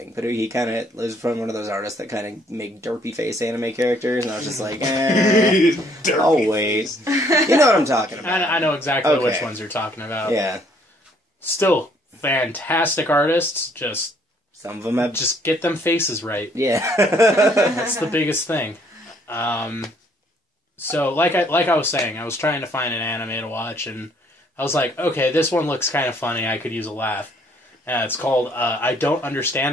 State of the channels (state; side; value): normal; both; correlation 0.64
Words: but he kind of was from one of those artists that kind of make derpy face anime characters, and I was just like, I'll wait. You know what I'm talking about. I know exactly Okay. which ones you're talking about. Yeah. Still, fantastic artists. Just Some of them have get them faces right. Yeah. That's the biggest thing. So, like I was saying, I was trying to find an anime to watch, and I was like, okay, this one looks kind of funny. I could use a laugh. It's called I Don't